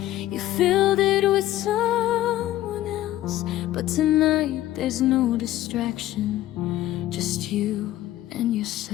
you filled it with someone else. But tonight there's no distraction, just you and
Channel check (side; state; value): right; quieter; 14.5 dB